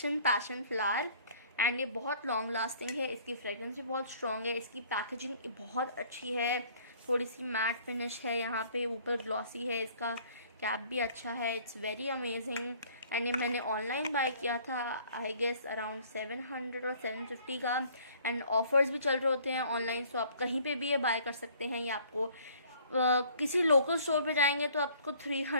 passion flower, and ये बहुत लॉन्ग लास्टिंग है. इसकी फ्रेगरेंस भी बहुत स्ट्रॉन्ग है. इसकी पैकेजिंग बहुत अच्छी है, थोड़ी सी मैट फिनिश है, यहाँ पे ऊपर ग्लॉसी है. इसका कैप भी अच्छा है. It's very amazing. एंड ये मैंने ऑनलाइन बाय किया था, आई गेस अराउंड 700 और 750 का, एंड ऑफर्स भी चल रहे होते हैं ऑनलाइन. सो आप कहीं पे भी ये बाय कर सकते हैं. ये आपको किसी लोकल स्टोर पे जाएंगे तो आपको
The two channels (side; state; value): both; inverted; correlation -0.56